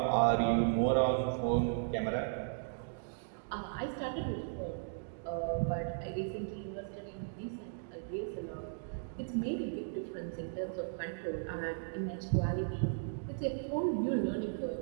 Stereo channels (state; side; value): silent; left; digital silence